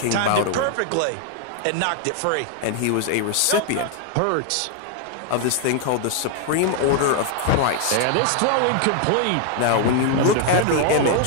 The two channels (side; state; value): both; different; correlation 0.00